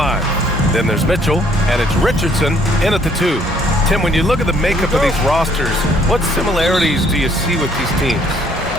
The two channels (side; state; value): both; normal; correlation 0.64